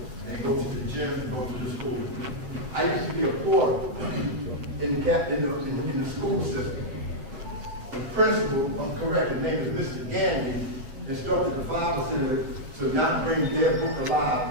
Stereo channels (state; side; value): late; left; 7.8 ms